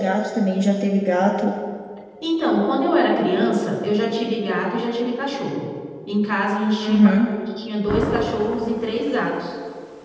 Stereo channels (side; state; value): both; identical; correlation 1.00